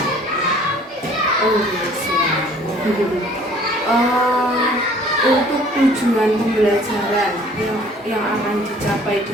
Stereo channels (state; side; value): normal; both; correlation 0.54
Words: Oh, siap. Untuk tujuan pembelajaran yang akan dicapai